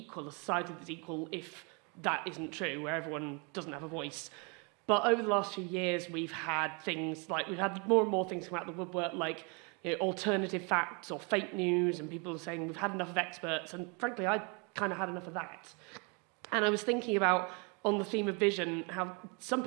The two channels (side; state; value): left; quieter; 33.2 dB